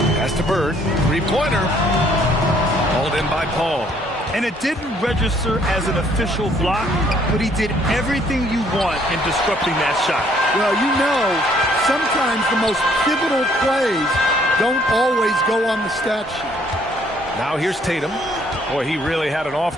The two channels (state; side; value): normal; both; correlation 0.64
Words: Pass to Bird. 3-pointer. Hauled in by Paul. And it didn't register as an official block, but he did everything you want in disrupting that shot. Well, you know, sometimes the most pivotal plays don't always go on the stat sheet. Now here's Tatum. Boy, he really had an off